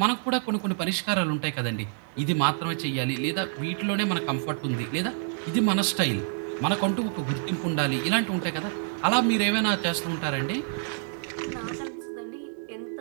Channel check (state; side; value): silent; left; digital silence